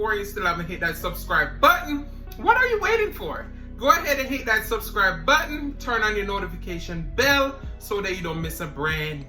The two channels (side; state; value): both; identical; correlation 1.00